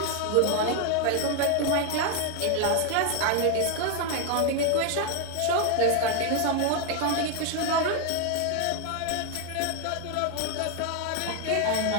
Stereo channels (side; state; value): both; different; correlation 0.01